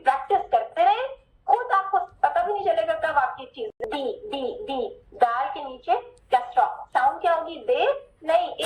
کرتے رہیں, خود آپ کو پتہ بھی نہیں چلے گا کب آپ کی چیز. ڈی دال کے نیچے کیا ساؤنڈ کیا ہوگی؟ دے نہیں,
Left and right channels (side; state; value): both; identical; correlation 1.00